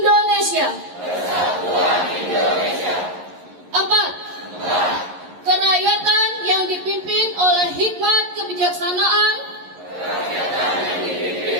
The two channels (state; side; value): late; left; 11 ms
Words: Empat. Kerakyatan yang dipimpin oleh hikmat kebijaksanaan